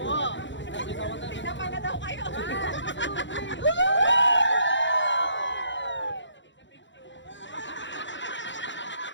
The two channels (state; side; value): late; right; 0.54 ms